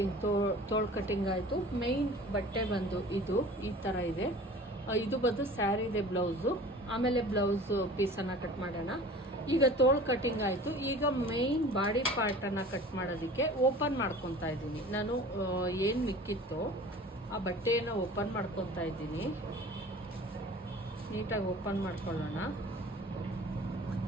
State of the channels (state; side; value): normal; both; correlation 0.42